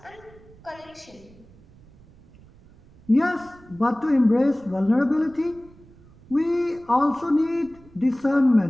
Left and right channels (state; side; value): noise; right; rumble, 25 dB below the sound